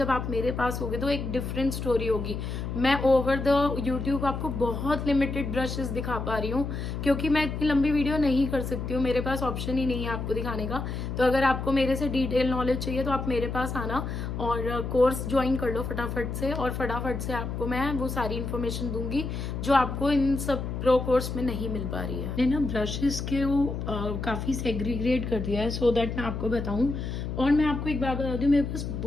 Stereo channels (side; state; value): left; noise; hum, 4 dB below the sound